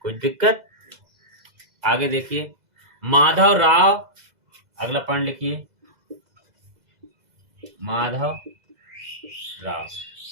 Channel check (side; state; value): left; late; 2.0 ms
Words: कोई दिक्कत? आगे देखिए, माधव राव, अगला पॉइंट लिखिए, माधव राव,